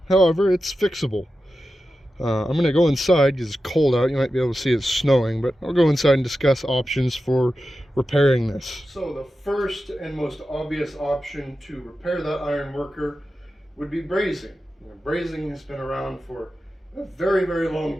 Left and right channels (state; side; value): normal; both; correlation 0.92